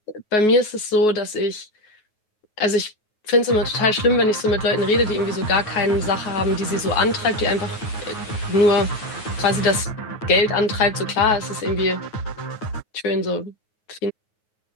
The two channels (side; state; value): right; late; 9.4 ms